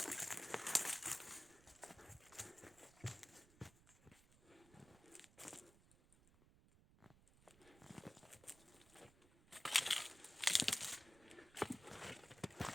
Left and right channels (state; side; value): noise; right; rumble, 24 dB below the sound